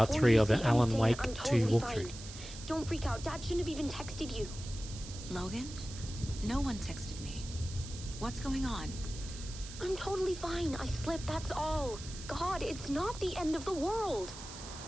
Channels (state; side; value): noise; right; hiss, 13 dB below the sound